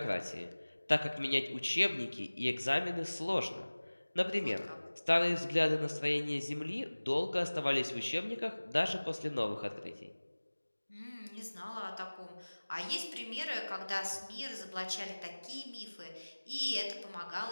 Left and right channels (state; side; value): inverted; both; correlation -1.00